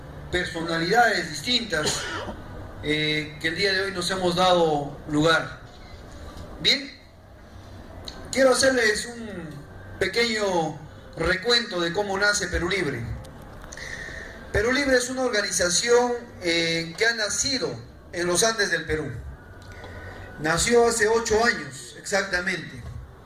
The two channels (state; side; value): identical; both; correlation 1.00